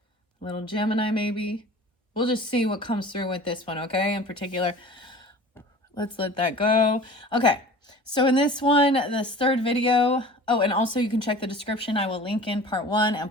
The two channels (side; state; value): both; normal; correlation 0.42